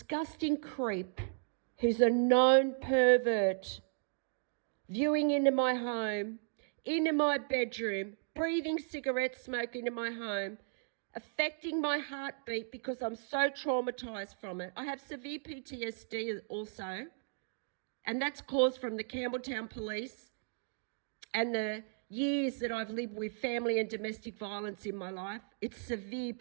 creep who's a known pervert viewing into my home, into my bedroom, breathing cigarette smoke into my home, affecting my heartbeat because I'm so traumatised from it. I have severe PTSD also, and that's caused from the Campbelltown police and the years that I've lived with family and domestic violence in my life. It's severe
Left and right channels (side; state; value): left; silent; digital silence